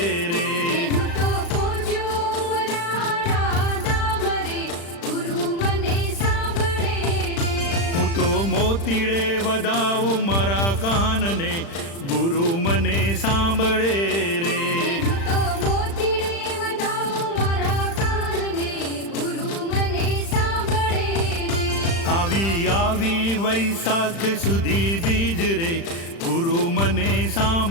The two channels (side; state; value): right; late; 35 ms